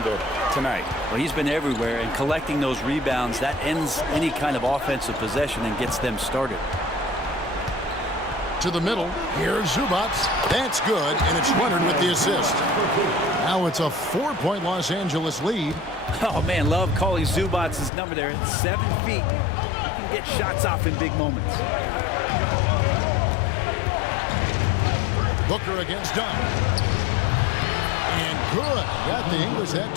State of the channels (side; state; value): right; drops out; at 17.9 s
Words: tonight. Well, he's been everywhere, and collecting those rebounds, that ends any kind of offensive possession and gets them started. To the middle. Here's Zubac. That's good, and it's Leonard with the assist. Now it's a 4-point Los Angeles lead. Oh, man, love calling Zubac's number there. At 7 feet, you can get shots off in big moments. Booker against Dunn. And good. Got the English that